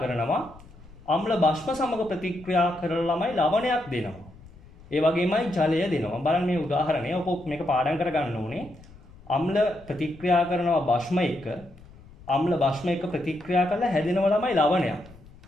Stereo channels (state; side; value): noise; left; rumble, 22 dB below the sound